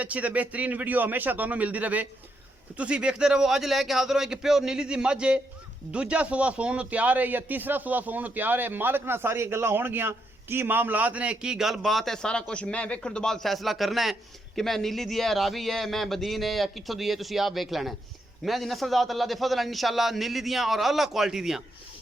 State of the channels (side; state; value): both; normal; correlation 0.79